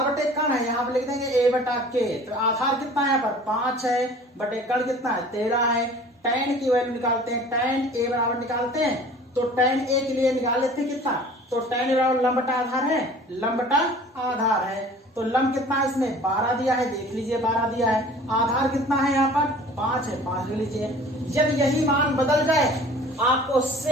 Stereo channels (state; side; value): normal; both; correlation 0.46